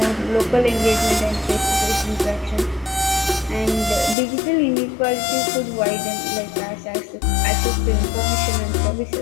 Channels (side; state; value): right; drops out; at 4.2 s